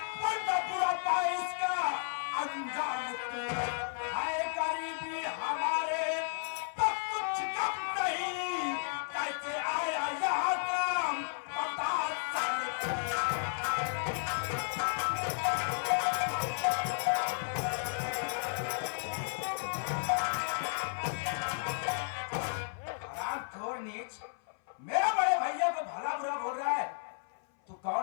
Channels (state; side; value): silent; right; 55 dB below the other